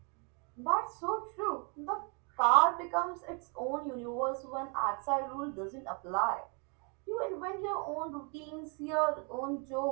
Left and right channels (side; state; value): left; quieter; 36.4 dB